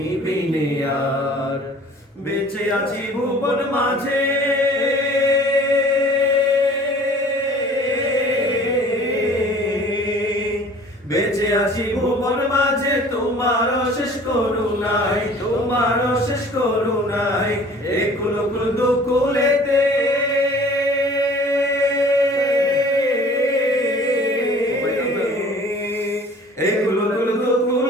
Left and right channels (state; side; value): normal; both; correlation 0.49